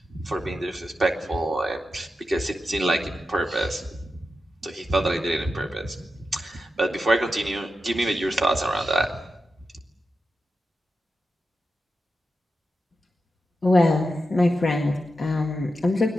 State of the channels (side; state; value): both; normal; correlation 0.89